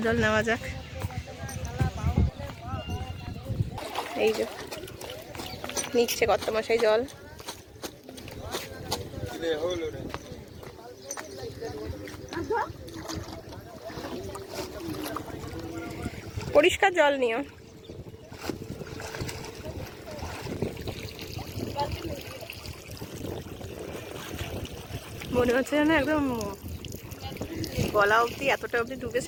জল নেওয়া যাক। এই যে নিচ্ছে কর্তামশাই জল। পরিষ্কার জল নিও। মনে হচ্ছে যেন একদম গলা অবধি, এতটা অবধি ডুবে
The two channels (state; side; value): identical; both; correlation 1.00